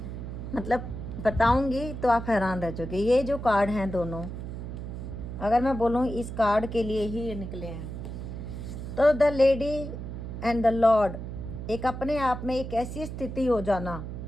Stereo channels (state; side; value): noise; right; hum, 7 dB below the sound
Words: मतलब बताऊंगी तो आप हैरान रह जाओगे। ये जो कार्ड हैं दोनों, अगर मैं बोलूँ इस कार्ड के लिए ही ये निकले हैं, तो the lady and the Lord एक अपने आप में एक ऐसी स्थिति हो जाना।